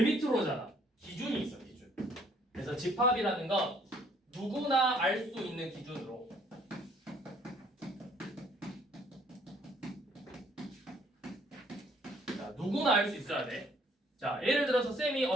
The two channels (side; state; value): both; normal; correlation 0.62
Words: 밑으로잖아. 기준이 있어, 기준. 그래서 집합이라는 건 누구나 알 수 있는 기준으로 자, 누구나 알 수 있어야 돼. 자, 예를 들어서 쌤이